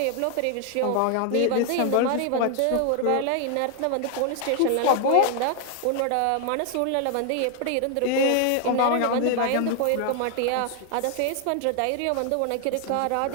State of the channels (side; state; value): both; different; correlation 0.00